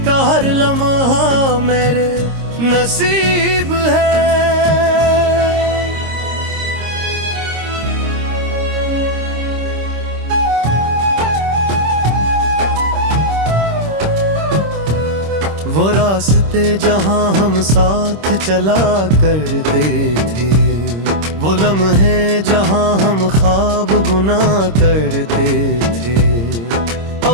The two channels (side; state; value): left; late; 26 ms